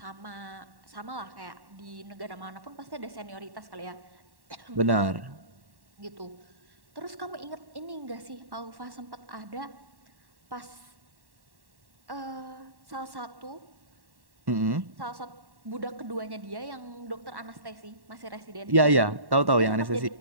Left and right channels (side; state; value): left; late; 1.1 ms